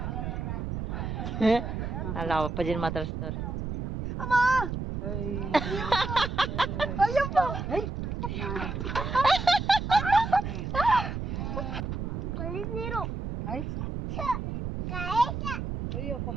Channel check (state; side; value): noise; right; rumble, 4 dB below the sound